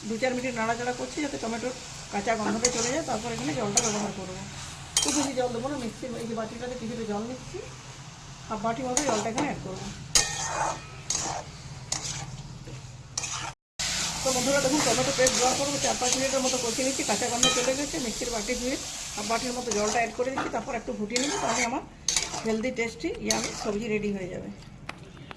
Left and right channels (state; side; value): identical; both; correlation 1.00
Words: 2-4 মিনিট নাড়াচাড়া করছি, যাতে টমেটোর কাঁচা গন্ধটা চলে যায়। তারপর এখানে জলটা ব্যবহার করবো। খুব বেশি জল দেবো না, মিক্সির এই যে বাটিটাতে কিছুটা জল নিচ্ছি, হাফ বাটি মতো জলটা এখানে অ্যাড করবো। তো বন্ধুরা দেখুন, টমেটো পেস্ট দেওয়ার পর 4-5 মিনিটের মতো কষিয়ে নিচ্ছি। কাঁচা গন্ধ চলে গেছে। মিক্সির বাটি ধুয়ে হাফ বাটির মতো জলটা অ্যাড করে দিচ্ছি, তারপর একটু ফুটিয়ে নিচ্ছি। তাহলে আমার হেলদি টেস্টি ইয়ামি সবজি রেডি হয়ে যাবে।